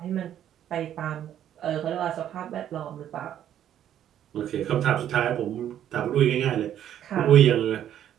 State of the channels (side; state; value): left; quieter; 10.7 dB